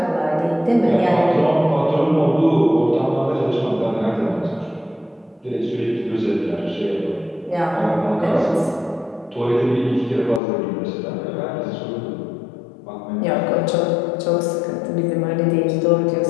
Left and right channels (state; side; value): drops out; right; at 10.4 s